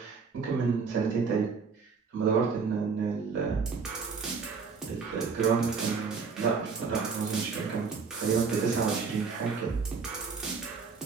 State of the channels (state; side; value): quieter; left; 5.2 dB